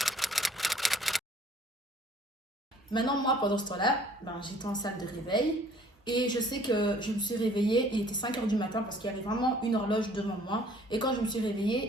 Maintenant, moi, pendant ce temps-là, ben, j'étais en salle de réveil. Et je sais que je me suis réveillée, il était 5 heures du matin parce qu'il y avait vraiment une horloge devant moi. Et quand je me suis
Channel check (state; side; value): normal; both; correlation 0.56